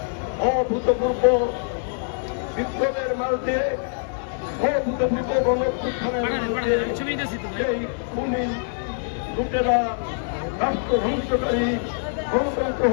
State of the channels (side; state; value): right; silent; digital silence